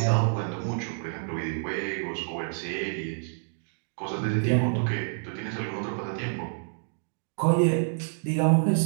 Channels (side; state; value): left; silent; digital silence